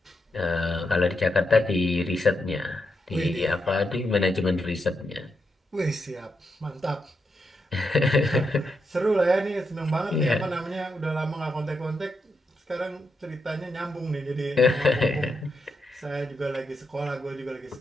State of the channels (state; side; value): normal; both; correlation 0.83